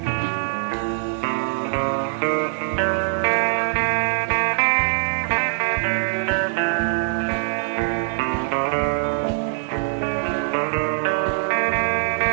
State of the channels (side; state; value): left; silent; digital silence